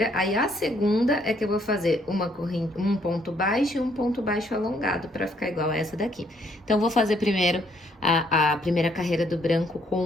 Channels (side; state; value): both; normal; correlation 0.68